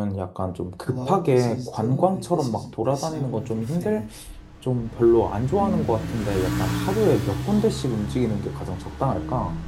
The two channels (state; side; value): identical; both; correlation 1.00